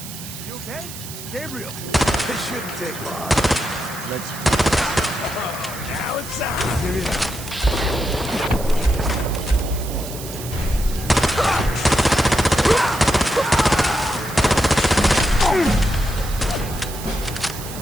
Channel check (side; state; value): right; noise; hiss, 12 dB below the sound